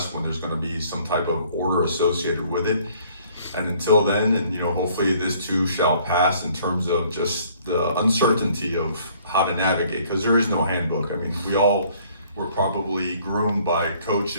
when there's going to be some type of order associated with it. And until then, and you know, hopefully this too shall pass in terms of just the uncertainty of how to navigate, because there is no handbook. I mean, we all were probably groomed by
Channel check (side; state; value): both; inverted; correlation -0.60